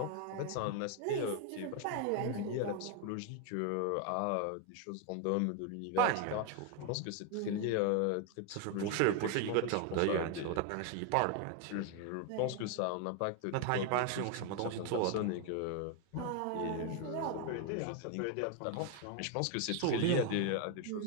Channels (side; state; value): both; different; correlation 0.01